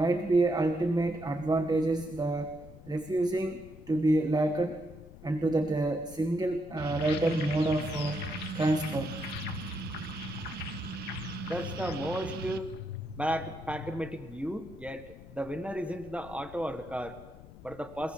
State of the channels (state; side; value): noise; left; rumble, 18 dB below the sound